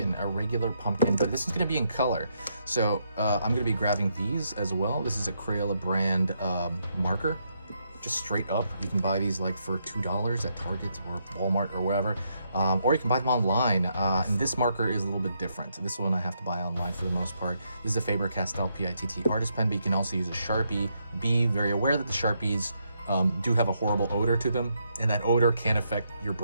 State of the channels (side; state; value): both; inverted; correlation -0.78